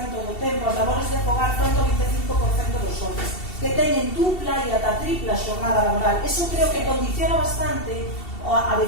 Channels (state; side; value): late; right; 2.7 ms